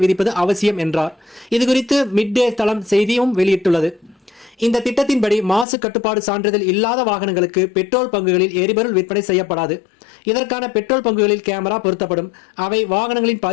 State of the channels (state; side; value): drops out; right; at 5.7 s